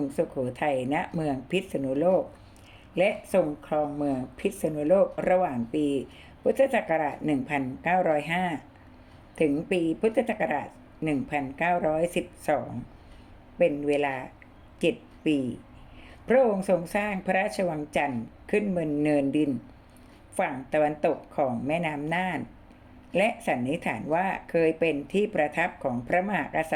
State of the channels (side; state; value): both; identical; correlation 1.00